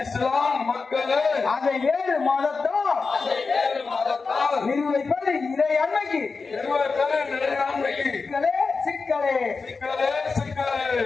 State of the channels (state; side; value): quieter; right; 4.5 dB